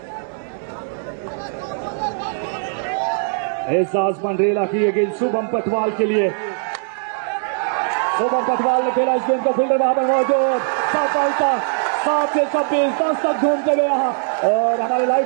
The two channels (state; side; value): silent; left; digital silence